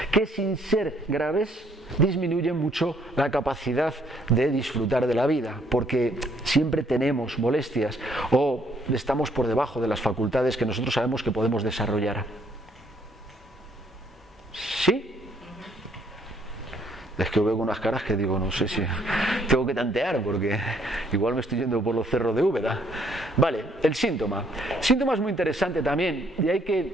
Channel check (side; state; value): both; normal; correlation 0.66